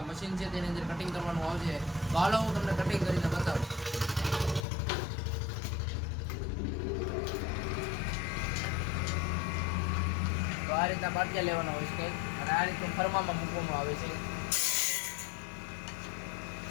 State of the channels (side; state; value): right; drops out; at 4.7 s